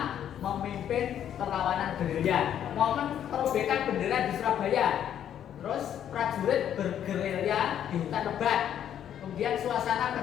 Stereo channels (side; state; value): right; quieter; 10.0 dB